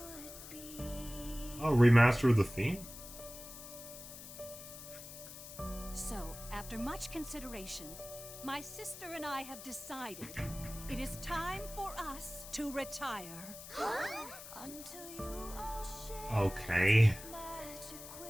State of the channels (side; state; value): left; noise; hiss, 13 dB below the sound